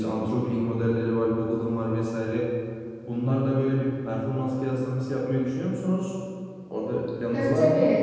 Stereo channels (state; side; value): identical; both; correlation 1.00